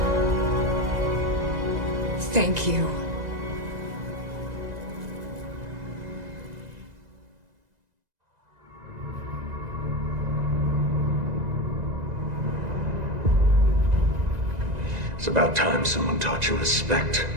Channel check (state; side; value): late; left; 2.0 ms